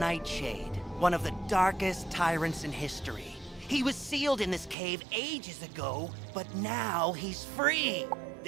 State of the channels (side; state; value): left; drops out; at 4.8 s